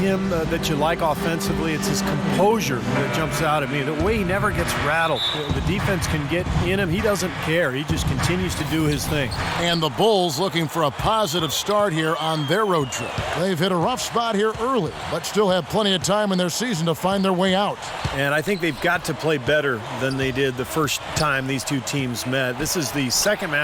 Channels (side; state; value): both; identical; correlation 1.00